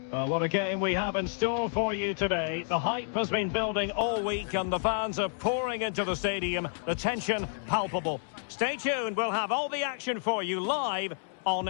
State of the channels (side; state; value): right; silent; digital silence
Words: What a game we have in store for you today. The hype has been building all week and the fans are pouring into the stadium. The tension palpable. Stay tuned, we'll have all the action for you live on